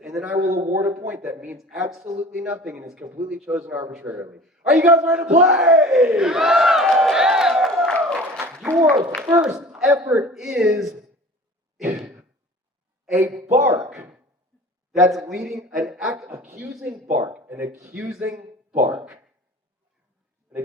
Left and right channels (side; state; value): both; normal; correlation 0.41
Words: And then I will award a point that means absolutely nothing and is completely chosen arbitrarily. Are you guys ready to play? Your first effort is a bark that's leading an accusing bark. An accusing bark. An